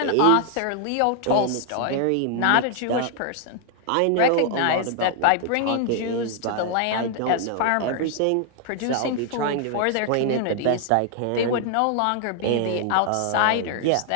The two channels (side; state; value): both; different; correlation 0.00